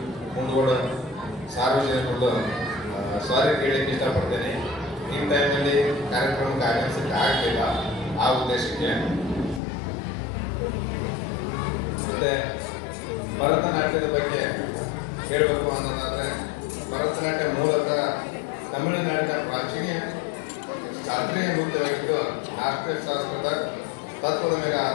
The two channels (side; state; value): right; drops out; at 9.6 s